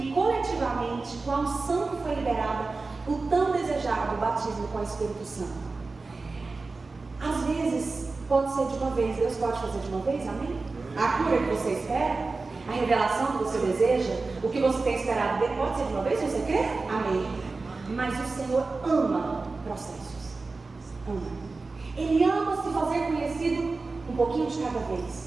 coletivamente, com a unção que foi liberada, o tão desejado batismo com o Espírito Santo. Às vezes pode ser de uma vez, Deus pode fazer de uma vez, amém? A cura que você espera, a revelação que você deseja, o que você tem esperado dele, pode ser de uma vez, se você crê? Amém. Mas o Senhor ama processos, ama. Ele ama se fazer conhecido um pouquinho de cada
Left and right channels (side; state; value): left; quieter; 3.8 dB